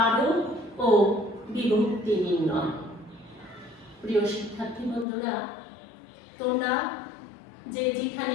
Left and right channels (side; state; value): right; drops out; at 5.1 s